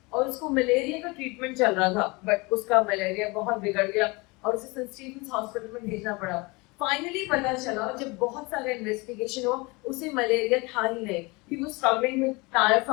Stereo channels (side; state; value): right; quieter; 25.8 dB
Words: और उसको मलेरिया का ट्रीटमेंट चल रहा था, बट उसका मलेरिया बहुत बिगड़ गया और उसे सेंट स्टीफेंस हॉस्पिटल में भेजना पड़ा। फाइनली पता चला, जब बहुत सारे इन्वेस्टिगेशन हुआ, उसे मलेरिया था ही नहीं, he was struggling with